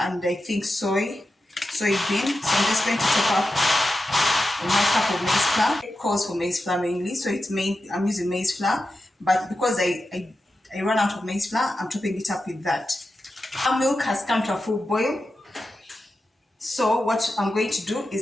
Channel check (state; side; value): normal; both; correlation 0.91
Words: I think soybean. So I'm just going to top up my cup of maize flour. It calls for maize flour mainly, so I'm using maize flour. But because I ran out of maize flour, I'm topping it up with that. Our milk has come to a full boil. So what I'm going to do